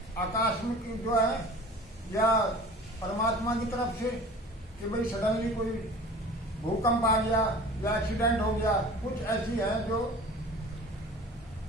आकस्मिक जो है या परमात्मा की तरफ से कि भाई सडनली कोई भूकंप आ गया या एक्सीडेंट हो गया। कुछ ऐसी है जो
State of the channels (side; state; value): both; normal; correlation 0.41